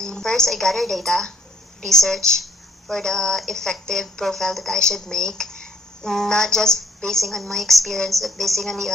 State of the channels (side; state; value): both; normal; correlation 0.63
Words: First, I gather data, research for the effective profile that I should make, not just basing on my experience, but basing on the